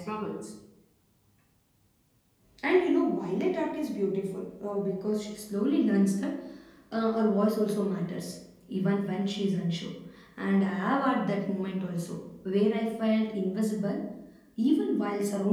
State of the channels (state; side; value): identical; both; correlation 1.00